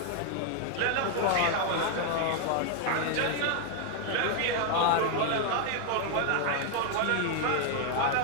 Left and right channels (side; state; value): both; different; correlation 0.00